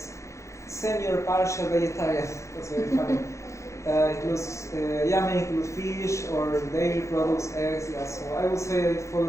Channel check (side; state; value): right; late; 0.14 ms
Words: Semi or partial vegetarian, that's very funny. Includes, may include fish or dairy products, eggs. Yeah, so I would say it